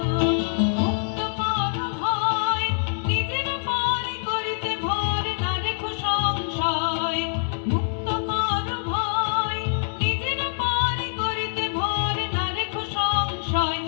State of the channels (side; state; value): right; silent; digital silence